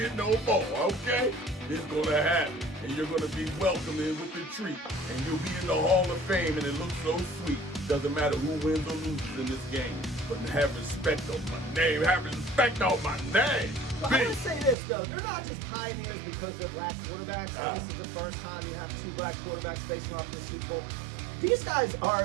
no more, okay? It's going to happen. And you're going to be welcomed in with the treat. And you'll be in the Hall of Fame, and it looks so sweet. Doesn't matter who wins or loses in this game. But have respect on my name. Have respect on my name. Well, I want to say this, though. They're not just pioneers because they're black quarterbacks. This is the first time you have two black quarterbacks facing off in the Super Bowl. These guys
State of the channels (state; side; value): drops out; left; at 14.8 s